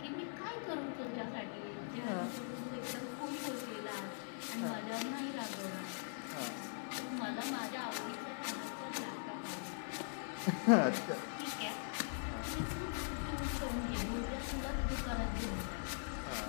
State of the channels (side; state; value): right; silent; digital silence